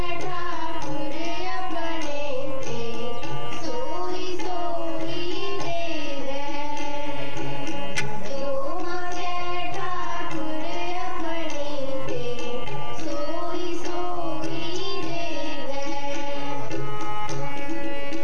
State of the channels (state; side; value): noise; left; rumble, 15 dB below the sound